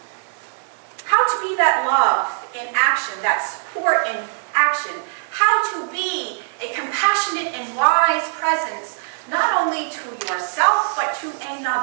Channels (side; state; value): left; silent; digital silence